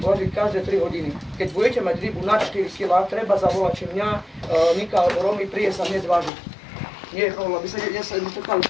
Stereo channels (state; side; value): drops out; right; at 6.3 s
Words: každé 3 hodiny. Keď budete mať rybu na 4 kg, treba zavolať, či mňa, Nika alebo Romy, príde sa hneď vážiť. Nie je problém, aby sa